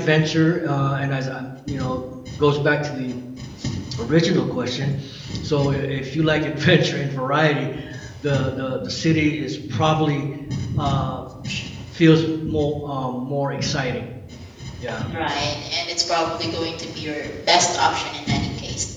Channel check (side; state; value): both; identical; correlation 1.00